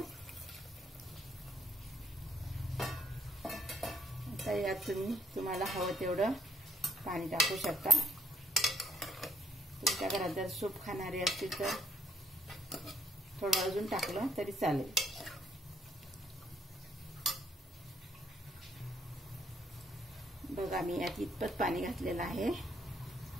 आता यात तुम्हाला हवं तेवढं पाणी टाकू शकता। तुमच्या घरात जर सूप खाणारे असतील तर थोडं अजून टाकलं तरी चालेल। बघा, मी यात इतपत पाणी घातलेलं आहे।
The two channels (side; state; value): both; normal; correlation 0.64